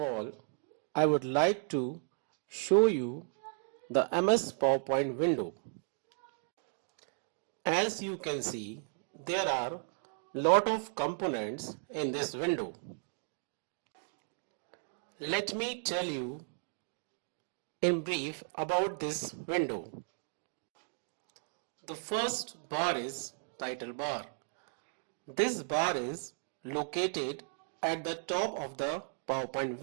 I would like to show you the MS PowerPoint window. As you can see, there are lot of components in this window. Let me tell you in brief about this window. The first bar is title bar. This bar is located at the top of the PowerPoint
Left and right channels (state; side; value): silent; left; digital silence